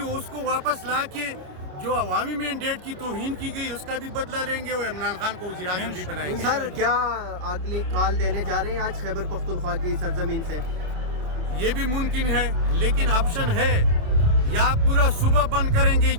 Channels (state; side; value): late; left; 27 ms